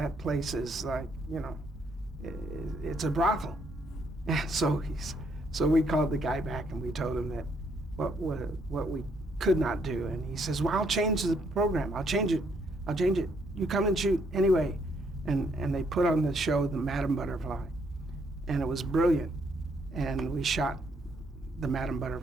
place is like, it's a brothel. So we called the guy back, and we told him that what we could not do. And he says, well, I'll change the program. I'll change it. You come and shoot anyway. And they put on the show, the Madam Butterfly, and it was brilliant. And we shot the Madam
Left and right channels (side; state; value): both; normal; correlation 0.71